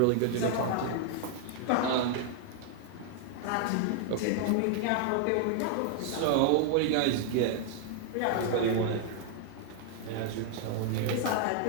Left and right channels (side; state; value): both; different; correlation 0.00